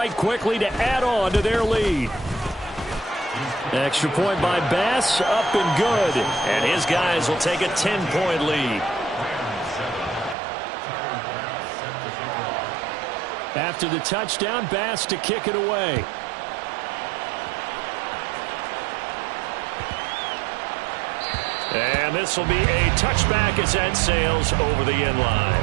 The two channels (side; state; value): left; drops out; at 10.4 s